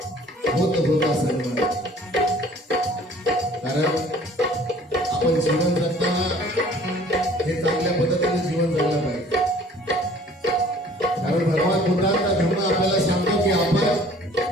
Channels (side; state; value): both; normal; correlation 0.53